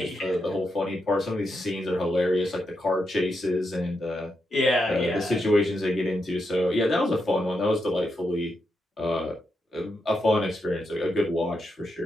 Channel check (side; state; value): both; normal; correlation 0.84